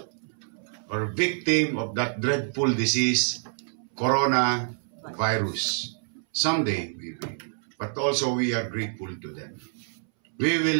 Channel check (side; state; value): left; silent; 60 dB below the other